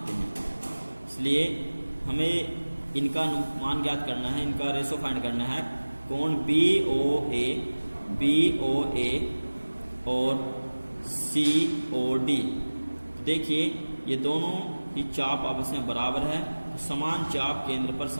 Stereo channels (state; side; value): inverted; both; correlation -1.00